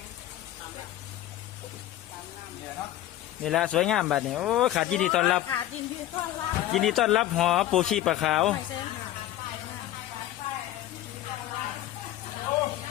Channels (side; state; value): right; quieter; 13.6 dB